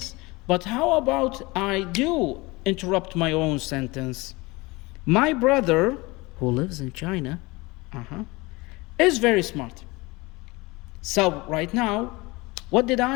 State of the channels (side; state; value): right; quieter; 23.4 dB